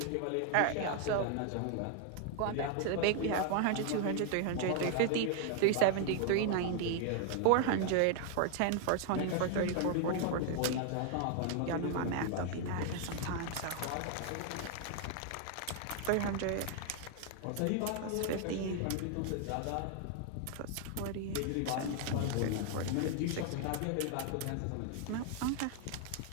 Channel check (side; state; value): both; different; correlation 0.00